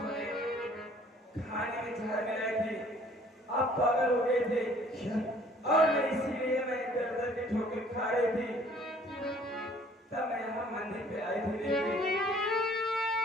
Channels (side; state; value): both; normal; correlation 0.56